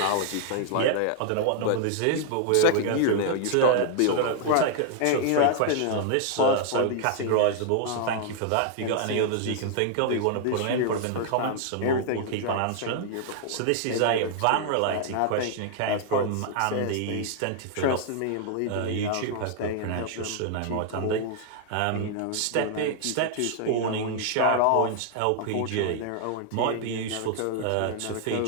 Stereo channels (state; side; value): different; both; correlation 0.00